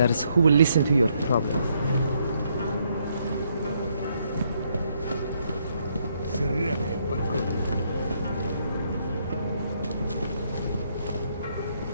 who will listen to your problems. Сраная погода.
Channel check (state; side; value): inverted; both; correlation -0.73